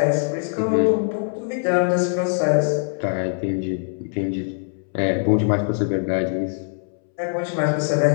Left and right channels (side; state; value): right; silent; 64 dB below the other